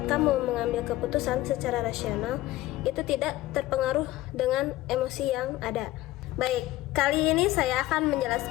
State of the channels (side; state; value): right; quieter; 16.6 dB